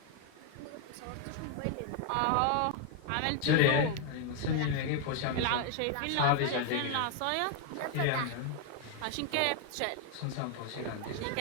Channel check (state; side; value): different; both; correlation 0.00